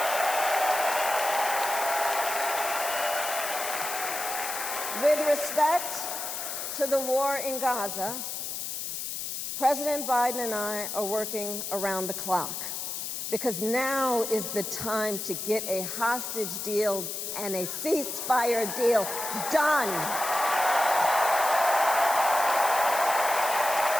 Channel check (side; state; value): left; noise; hiss, 5 dB below the sound